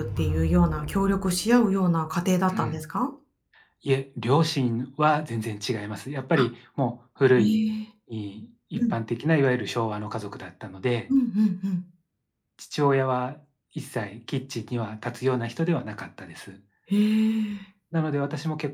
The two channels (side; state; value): both; identical; correlation 1.00